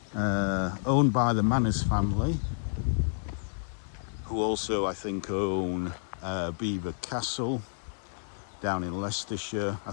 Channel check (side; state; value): right; silent; digital silence